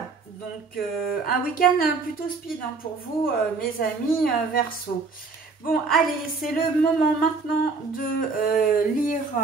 donc un week-end plutôt speed, hein, pour vous, mes amis Verseaux. Bon, allez, c'est le moment maintenant de lire,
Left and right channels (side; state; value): left; quieter; 4.4 dB